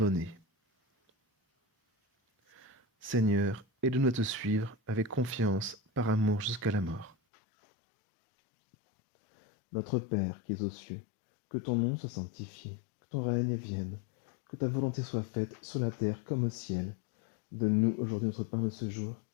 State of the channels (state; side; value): drops out; right; at 7.2 s